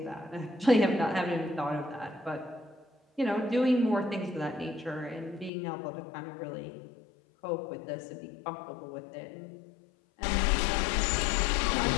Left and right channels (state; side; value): drops out; right; at 5.5 s